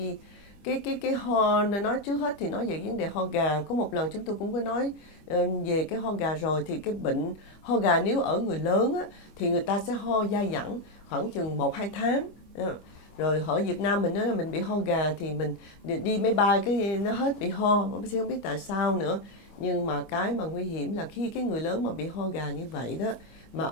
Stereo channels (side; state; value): right; late; 25 ms